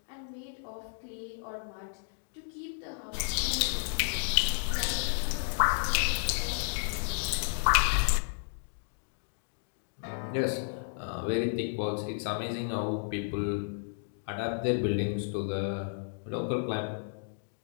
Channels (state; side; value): silent; right; digital silence